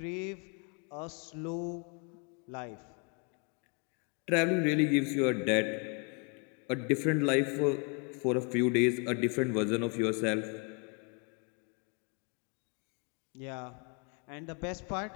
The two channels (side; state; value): right; quieter; 34.5 dB